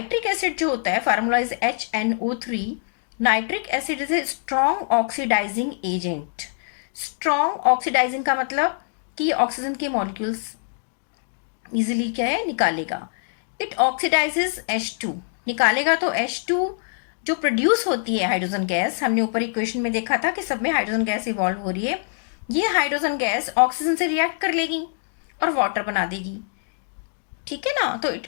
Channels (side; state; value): right; silent; digital silence